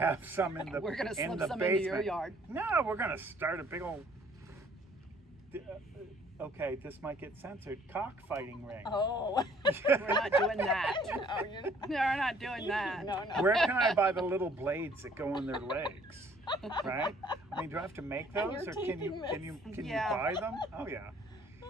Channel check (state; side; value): normal; both; correlation 0.59